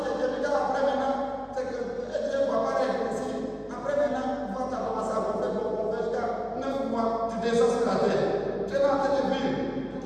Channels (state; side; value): identical; both; correlation 1.00